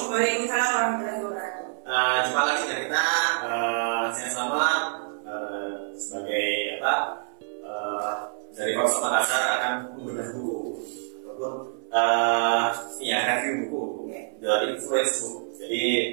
Waalaikumsalam warahmatullahi wabarakatuh. Jumpa lagi dengan kita. Saya selamat sebagai dari Korps Makassar akan membedah buku ataupun review buku dari influence book. Jadi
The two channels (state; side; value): silent; left; 60 dB below the other